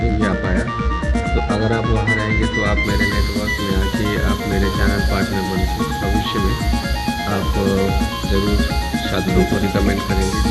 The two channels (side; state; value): both; identical; correlation 1.00